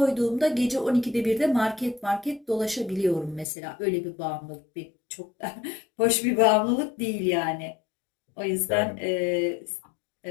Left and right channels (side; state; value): right; drops out; at 3.5 s